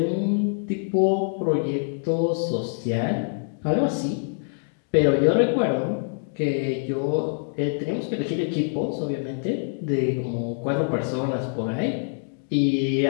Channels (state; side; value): silent; right; digital silence